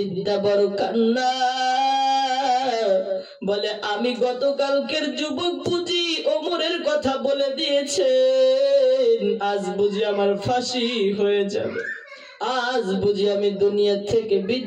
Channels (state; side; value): identical; both; correlation 1.00